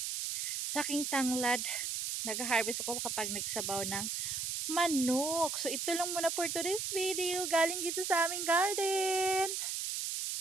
Sa aking tanglad, nag-harvest ako kapag nagsabaw ng manok. So, ito lang muna for today's video. Galing dito sa aming garden.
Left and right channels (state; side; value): noise; right; hiss, 2 dB below the sound